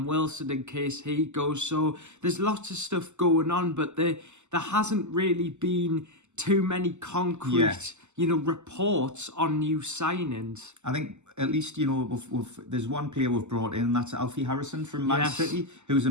Wilson in case he goes. So there's lots of stuff going on, but there hasn't really been too many concrete, reports on new signings. I think at least, there's one player we've brought in, and that's Alfie Harrison from Man City, who's a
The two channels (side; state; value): left; late; 0.83 ms